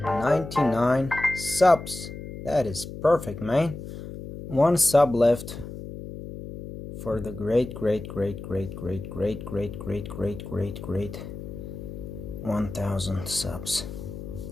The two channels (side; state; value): left; noise; hum, 10 dB below the sound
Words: subs. That is perfect, man. One sub left for the great 1000 subs.